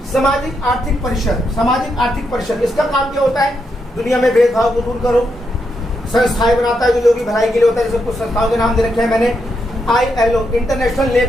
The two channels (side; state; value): both; normal; correlation 0.82